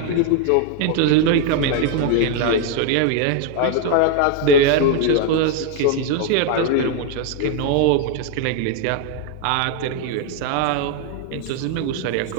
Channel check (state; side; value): different; both; correlation 0.00